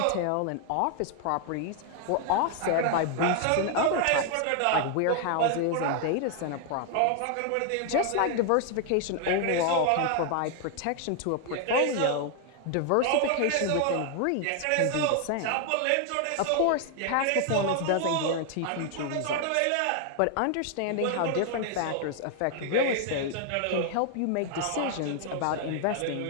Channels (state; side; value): different; both; correlation 0.00